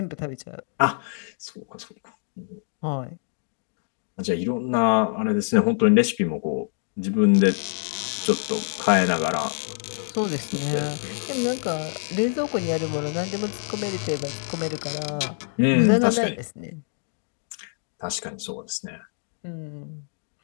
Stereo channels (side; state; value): right; silent; digital silence